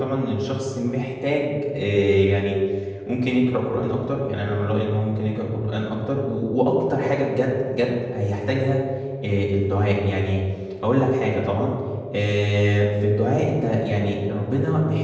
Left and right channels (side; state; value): both; identical; correlation 1.00